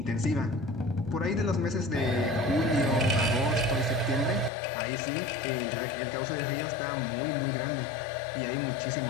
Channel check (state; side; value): drops out; right; at 4.5 s